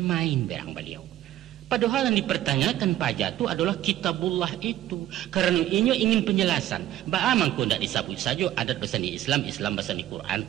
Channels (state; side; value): quieter; left; 13.5 dB